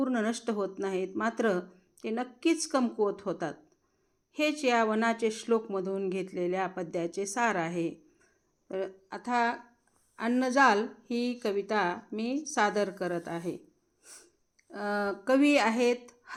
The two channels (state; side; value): identical; both; correlation 1.00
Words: नष्ट होत नाहीत, मात्र ते नक्कीच कमकुवत होतात. हेच या वनाचे श्लोकमधून घेतलेल्या पद्याचे सार आहे. तर आता अन्नजाल ही कविता मी सादर करत आहे. कवी आहेत